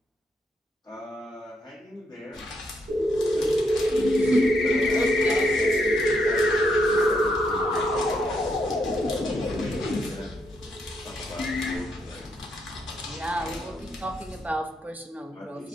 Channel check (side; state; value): both; normal; correlation 0.77